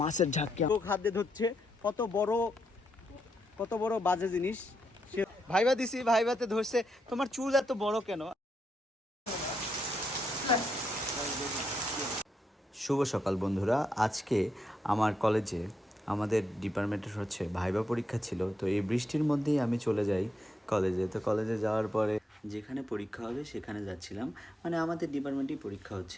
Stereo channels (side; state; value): both; normal; correlation 0.81